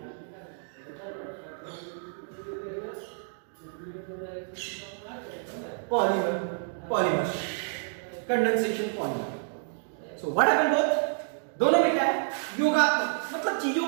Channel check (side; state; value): left; silent; digital silence